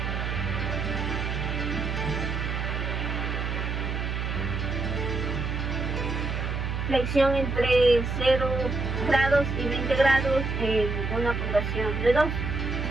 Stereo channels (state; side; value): noise; right; hum, 2 dB below the sound